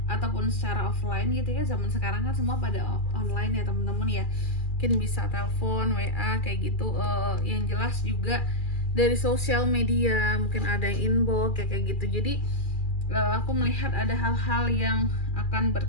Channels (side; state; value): right; late; 2.4 ms